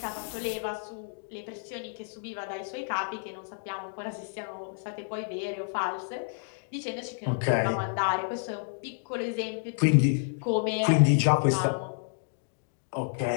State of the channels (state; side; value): silent; right; digital silence